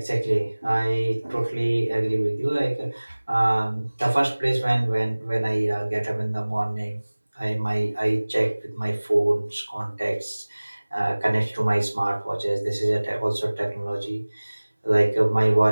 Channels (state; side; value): inverted; both; correlation -1.00